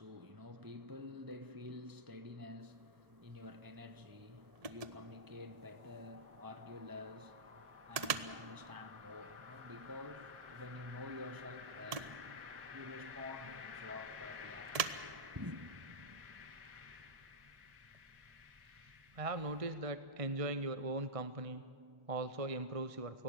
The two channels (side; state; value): left; late; 1.7 ms